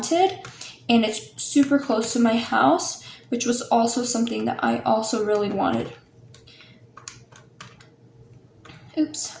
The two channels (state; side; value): identical; both; correlation 1.00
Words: and it's super close to my house, which was also something that I also really wanted. Oops,